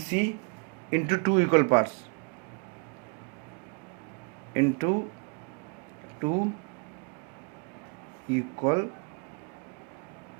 into 2 equal parts, into 2 equal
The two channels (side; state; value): left; quieter; 34.7 dB